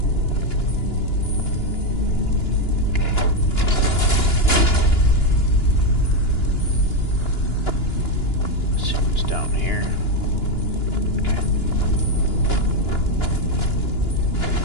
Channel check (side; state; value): right; late; 2.9 ms